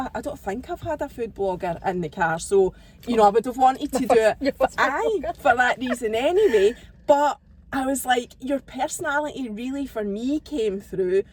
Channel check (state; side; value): identical; both; correlation 1.00